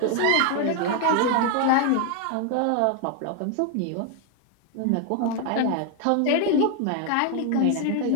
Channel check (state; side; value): different; both; correlation 0.00